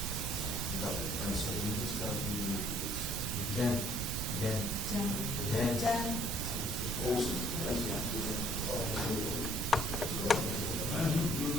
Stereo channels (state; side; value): noise; right; rumble, 3 dB below the sound